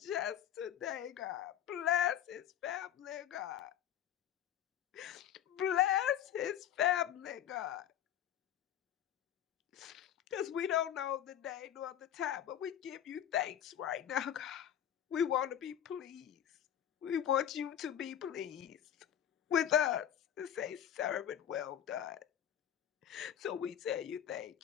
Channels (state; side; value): quieter; right; 10.3 dB